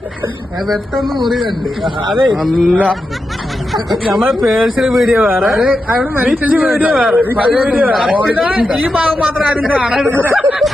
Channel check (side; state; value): both; normal; correlation 0.88